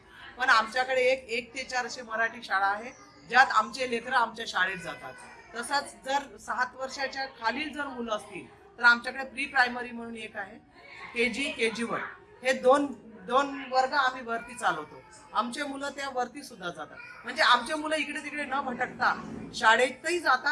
पण आमच्याकडे 1 ते 4 असे मराठी शाळा आहे ज्यात आमचे लेकर आमच्या शाळेत जातात. तसंच जर 7 वर्षाच्या खालील जर मुलं असतील तर आमच्याकडे प्री प्रायमरी म्हणून एक आहे, KG1 हे दोन वर्ग आम्ही वरती चालवतो. आमचे मुलं त्या वरती सुद्धा जातात. म्हणजे आमचे मुलं इकडे तिकडे न भटकता शाळेतही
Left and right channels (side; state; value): both; identical; correlation 1.00